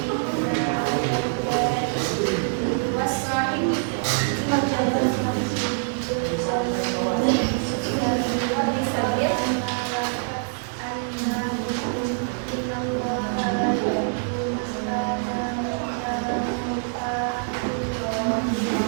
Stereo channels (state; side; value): silent; left; digital silence